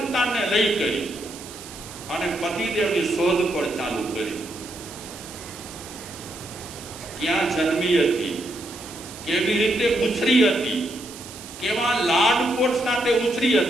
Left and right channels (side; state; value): right; noise; hiss, 15 dB below the sound